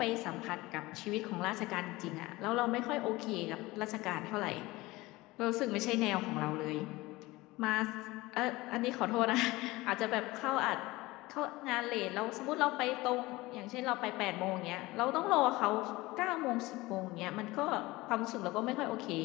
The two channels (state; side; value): quieter; right; 20.4 dB